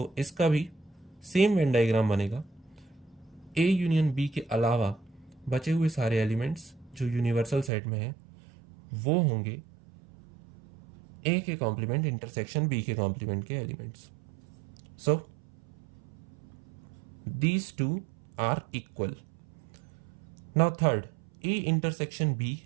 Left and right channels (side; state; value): left; drops out; at 7.7 s